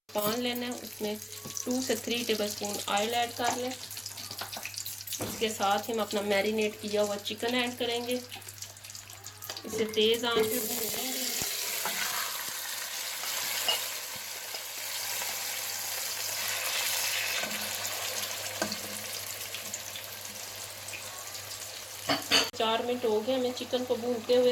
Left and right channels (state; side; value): identical; both; correlation 1.00